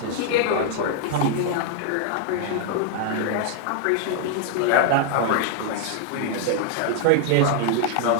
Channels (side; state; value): both; different; correlation 0.00